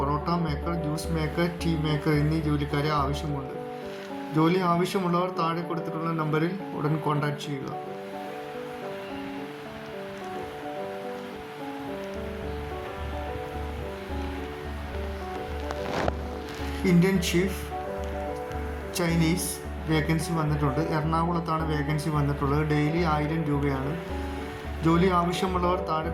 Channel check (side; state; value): both; identical; correlation 1.00